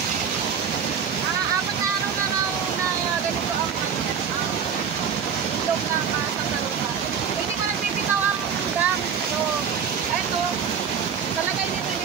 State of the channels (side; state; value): left; quieter; 7.2 dB